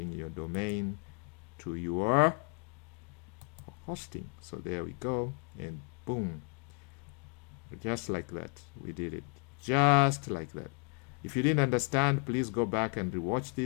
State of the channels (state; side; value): quieter; right; 38.0 dB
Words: your domain to your hosting. So there we go, and boom, just like that, we did it, just like that. If you didn't understand, please go back and rewatch